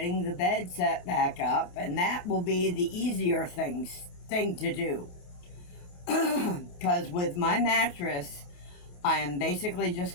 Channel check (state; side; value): late; right; 28 ms